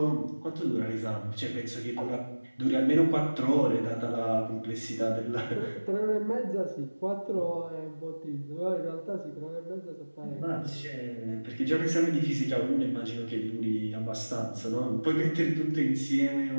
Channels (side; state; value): both; inverted; correlation -1.00